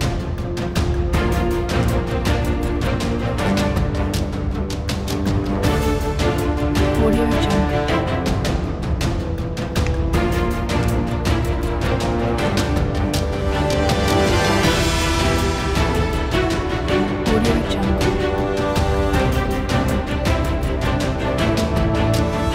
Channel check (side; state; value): both; identical; correlation 1.00